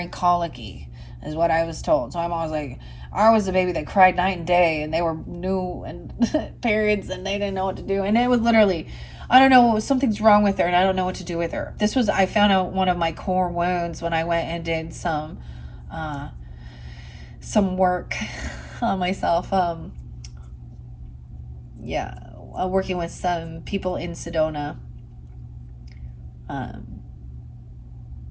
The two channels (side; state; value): both; identical; correlation 1.00